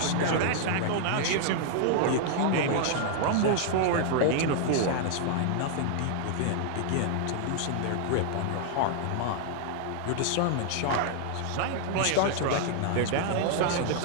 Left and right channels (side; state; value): both; different; correlation -0.01